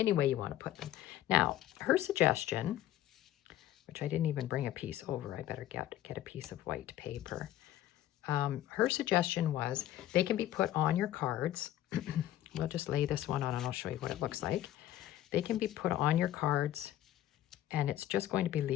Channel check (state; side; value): quieter; right; 13.1 dB